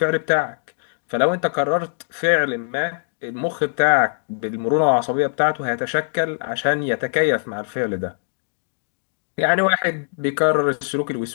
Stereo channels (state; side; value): silent; right; digital silence